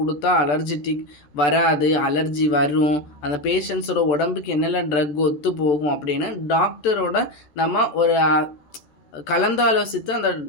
அலர்ஜிட்டிக் வராது, அலர்ஜி வரும், அந்த பேஷண்ட்ஸோட உடம்புக்கு என்னெல்லாம் ட்ரக் ஒத்து போகும் அப்படின்னு டாக்டரோட நம்ம ஒரு கலந்தாலோசித்து அந்த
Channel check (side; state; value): right; late; 14 ms